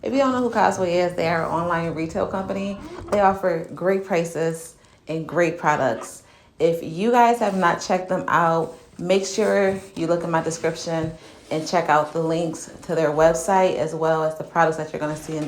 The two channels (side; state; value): both; identical; correlation 1.00